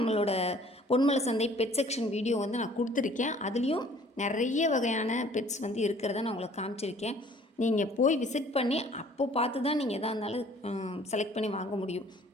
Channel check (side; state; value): both; normal; correlation 0.55